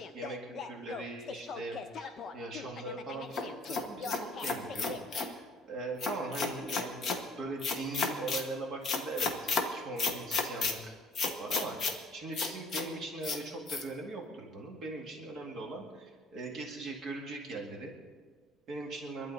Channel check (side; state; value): both; normal; correlation 0.55